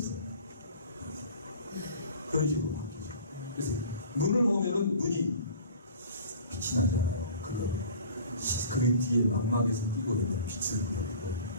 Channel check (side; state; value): both; inverted; correlation -0.45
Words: 그런 식으로 바뀌죠. 그래서 눈을 보면은 눈이 빛이 나잖아요. 그 뒤에 망막에서 띄고 있는 빛을 보여주고